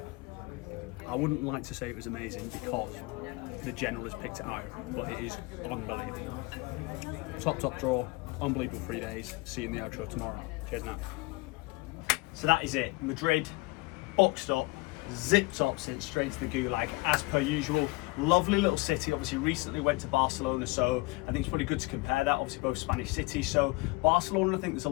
I wouldn't like to say it was amazing because the general has picked it out, but it is unbelievable. Top draw, unbelievable 3 days. See you in the outro tomorrow. Cheers now. So that is it. Madrid, boxed up, zipped up since straight to the Gulag as per usual. Lovely little city. Obviously recently went to Barcelona, so I think it's probably good to compare that. Obviously both Spanish cities. So Barcelona, I think there's a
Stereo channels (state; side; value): quieter; right; 23.7 dB